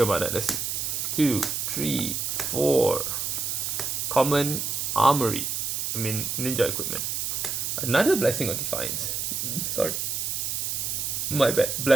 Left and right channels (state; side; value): noise; right; hiss, 1 dB below the sound